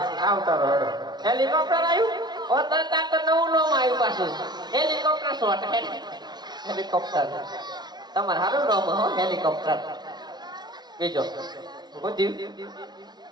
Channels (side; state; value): left; late; 0.20 ms